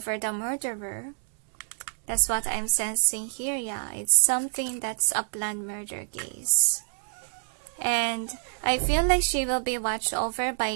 the murderer. That's what I'm sensing here. Yeah, it's something that's a planned murder case. And I feel like she will be watched over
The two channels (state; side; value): silent; left; 60 dB below the other